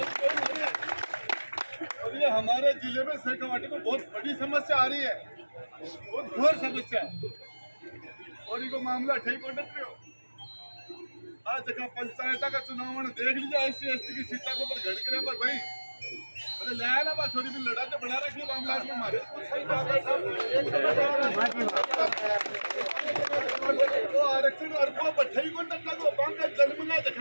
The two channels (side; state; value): both; inverted; correlation -1.00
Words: गोइंग हो रही है। और ये हमारे जिले में सहकावाटी में बहुत बड़ी समस्या आ रही है, बहुत घोर समस्या है और इनको मामला ठीक हो सकते हो। आज जगह पंचायत का चुनाव देख लीजिए, SC/ST की सीटा को पर घड़ के पर भाई अरे लाया ना बात छोरी भी लड़ा तो बना रखी मामला में मारे तो आरक्षण और को बठाई को टक्का को बैंक का जन्म ना